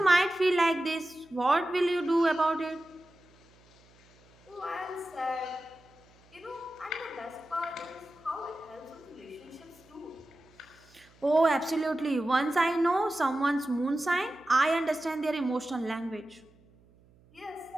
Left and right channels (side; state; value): right; noise; hum, 29 dB below the sound